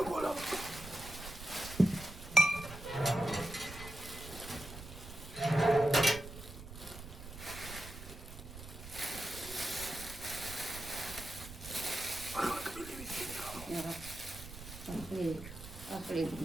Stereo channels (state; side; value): noise; right; rumble, 13 dB below the sound